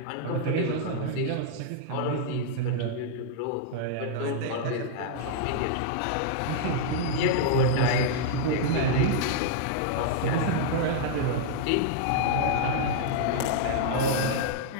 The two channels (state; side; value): different; both; correlation -0.01